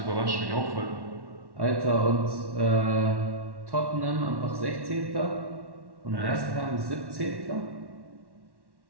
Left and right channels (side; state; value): left; late; 1.1 ms